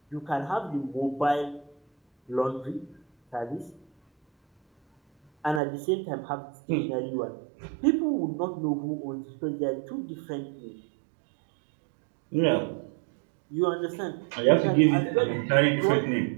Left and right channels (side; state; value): left; drops out; at 5.6 s